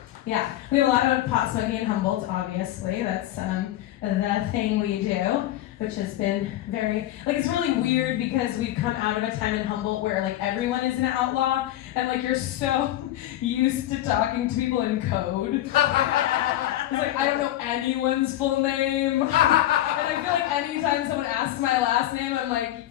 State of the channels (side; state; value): right; quieter; 13.8 dB